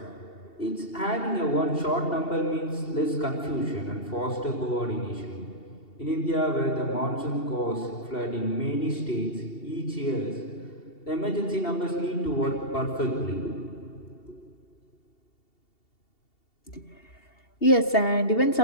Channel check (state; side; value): late; right; 2.7 ms